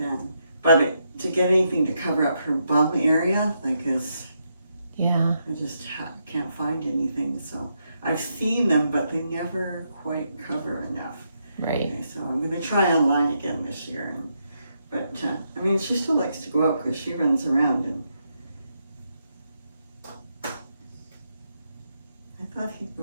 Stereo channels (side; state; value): both; inverted; correlation -0.80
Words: But to get anything to cover up her bum area, like yeah, I just can't find anything. So I've seen them, but they never quite cover enough. Right. Okay, so I'm going to try online again this year. But I mean, she still likes to go out because she runs around. And I thought he'd go